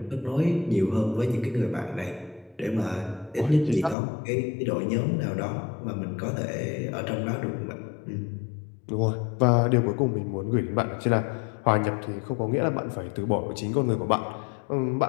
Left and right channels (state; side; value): drops out; right; at 4.0 s